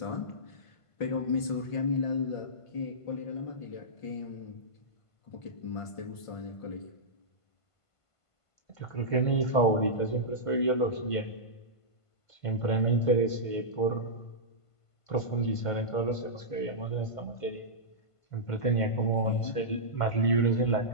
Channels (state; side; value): late; right; 1.5 ms